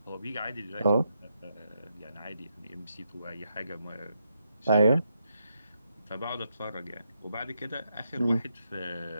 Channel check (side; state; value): both; inverted; correlation -0.82